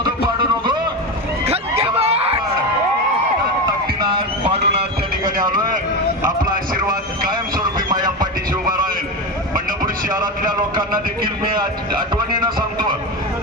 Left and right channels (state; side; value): normal; both; correlation 0.18